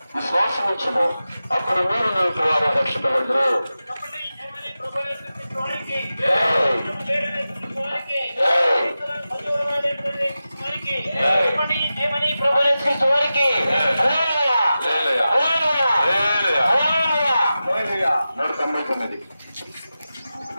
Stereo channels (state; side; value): inverted; both; correlation -0.93